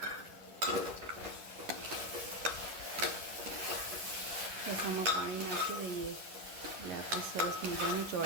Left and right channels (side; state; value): left; late; 11 ms